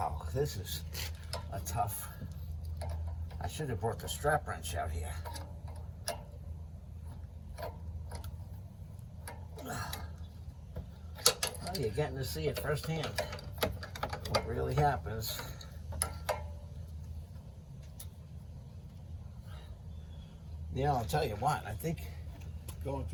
this is a tough. I should have brought the strap wrench out here. Well, you're getting to see it firsthand. What really happens. You know, I'll tell you what, I think going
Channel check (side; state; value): both; identical; correlation 1.00